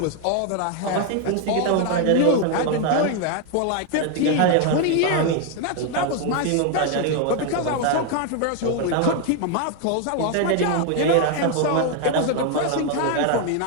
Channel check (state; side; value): different; both; correlation 0.01